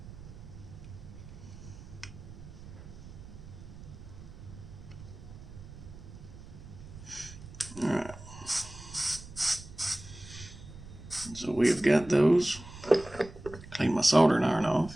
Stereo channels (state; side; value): noise; right; rumble, 15 dB below the sound